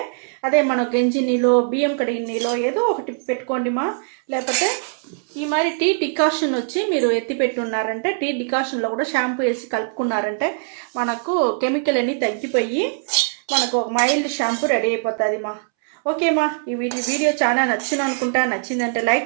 అదే మన గంజి నీళ్ళు, బియ్యం కడిగిన నీళ్ళు ఏదో ఒకటి పెట్టుకోండి మా. లేకపోతే ఈ మరి టీ డికాషన్ వచ్చి మీరు ఎత్తి పెట్టున్నారంటే టీ డికాషన్లో కూడా షాంపూ వేసి కలుపుకున్నారంటే మనకు కెమికల్ అన్నీ తగ్గిపోయి మనకు ఒక మైల్డ్ షాంపూ రెడీ అయిపోతుంది మా. ఓకే మా, ఈ వీడియో చాలా నచ్చిందంటే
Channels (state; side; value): silent; left; 65 dB below the other